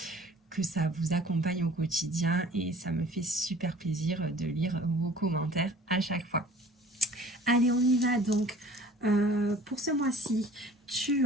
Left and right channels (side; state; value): both; normal; correlation 0.49